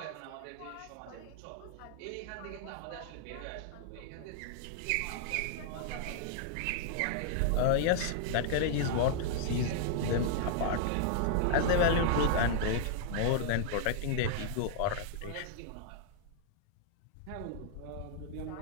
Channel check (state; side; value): different; both; correlation -0.01